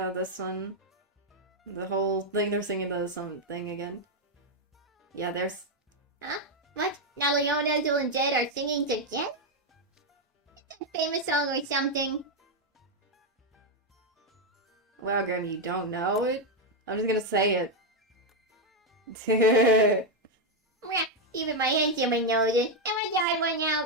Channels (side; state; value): both; normal; correlation 0.02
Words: this one. The whole thing, they're singing the song thing again. Yeah, there's... Huh? What? Now Leona, Azul, and Jed are singing together? It's a famous song or something. Well, Grim, you don't know it? I'm just gonna say it. Even my handsome knows it. And my dad went